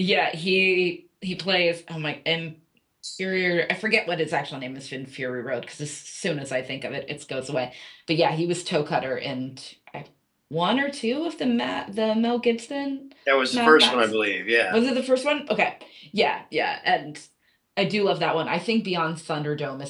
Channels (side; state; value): both; identical; correlation 1.00